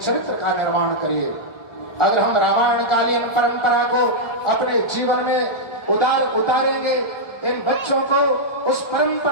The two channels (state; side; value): late; right; 1.4 ms